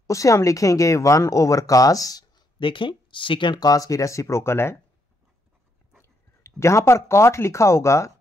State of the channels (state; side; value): normal; both; correlation 0.76